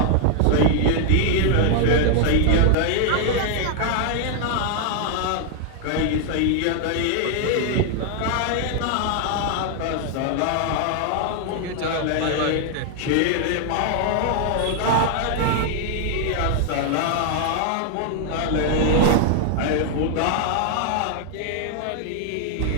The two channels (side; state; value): both; different; correlation 0.00